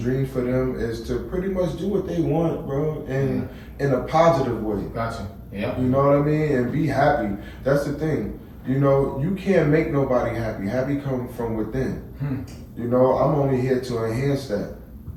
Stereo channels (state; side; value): identical; both; correlation 1.00